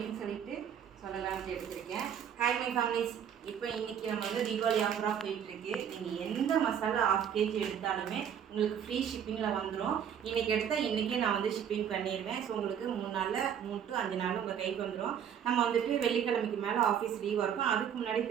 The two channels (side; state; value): left; quieter; 8.7 dB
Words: சொல்லிட்டு சொல்லலாம்னு எடுத்துருக்கேன். ஹாய் மை ஃபேமிலிஸ், இப்போ இன்றைக்கி நம்ம வந்து தீபாவளி ஆஃபராக போயிட்டுருக்கு. நீங்கள் எந்த மசாலா 1/2 kg எடுத்தாலுமே உங்களுக்கு ஃப்ரீ ஷிப்பிங்கில் வந்துடும். இன்றைக்கி எடுத்தால் இன்றைக்கே நான் வந்து ஷிப்பிங் பண்ணிடுவேன். ஸோ உங்களுக்கு 3 நாளில் 3 to 5 நாள் உங்கள் கைக்கு வந்துடும். நம்ம வந்துட்டு வெள்ளிக்கிழமைக்கு மேலே ஆஃபீஸ் லீவாக இருக்கும். அதுக்கு முன்னாடி